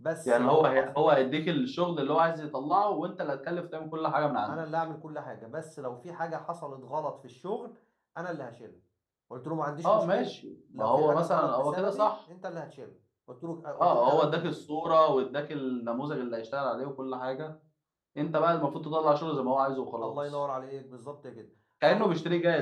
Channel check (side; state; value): both; identical; correlation 1.00